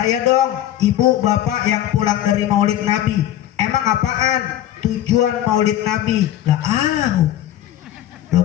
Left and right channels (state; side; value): quieter; right; 12.4 dB